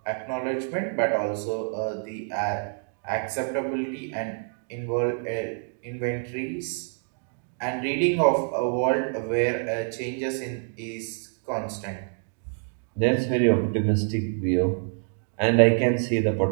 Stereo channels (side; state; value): left; silent; 60 dB below the other